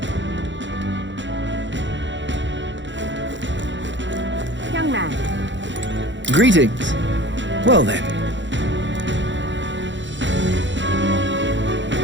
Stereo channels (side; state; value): left; late; 0.54 ms